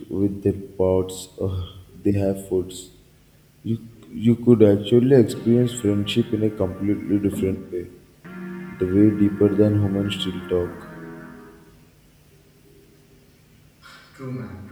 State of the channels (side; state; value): both; identical; correlation 1.00